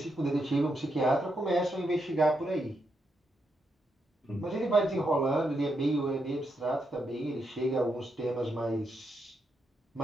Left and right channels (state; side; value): normal; both; correlation 0.82